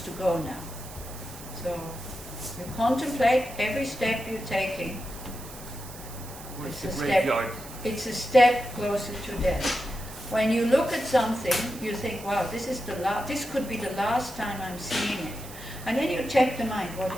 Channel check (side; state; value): right; noise; hiss, 15 dB below the sound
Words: go now. So, you contemplate every step you're taking. Where's the graveyard? It's a step closer to death. When you look at something, you think, wow, this could be the last time I'm seeing it. And then you check the mind, what